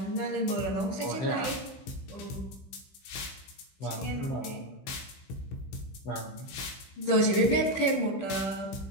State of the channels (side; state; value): right; late; 15 ms